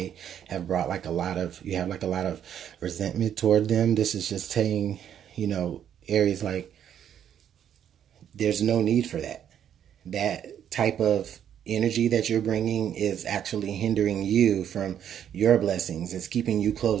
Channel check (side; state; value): left; quieter; 9.5 dB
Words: have brought like you have like a lot of resentment toward them. This is just saying, you know, Aries, like, there's no need for that. That type of energy that you're bringing is actually hindering you from your blessings. It's keeping you